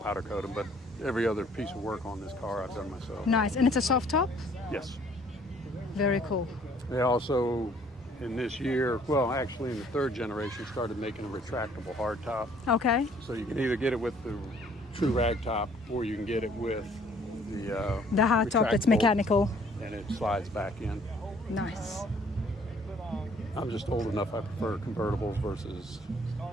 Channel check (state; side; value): normal; both; correlation 0.59